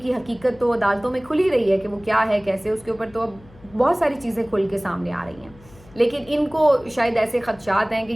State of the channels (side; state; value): left; noise; hum, 24 dB below the sound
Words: کی حقیقت تو عدالتوں میں کھلی رہی ہے کہ وہ کیا ہے کیسے، اس کے اوپر تو اب بہت ساری چیزیں کھل کے سامنے آ رہی ہیں، لیکن ان کو شاید ایسے خدشات ہیں کہ